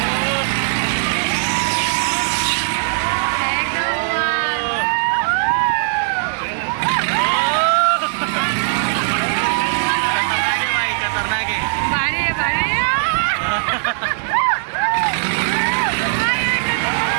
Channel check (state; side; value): silent; left; 60 dB below the other